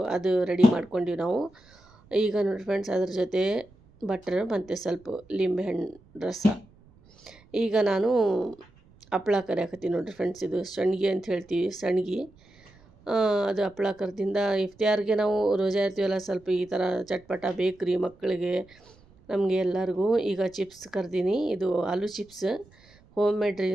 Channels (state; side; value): noise; right; rumble, 28 dB below the sound